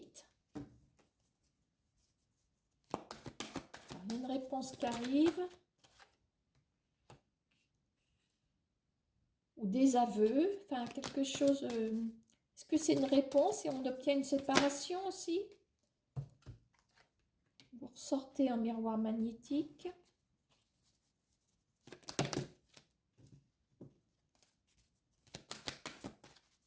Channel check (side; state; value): both; identical; correlation 1.00